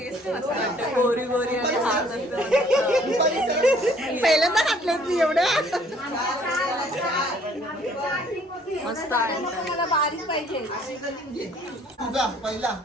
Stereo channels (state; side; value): normal; both; correlation 0.59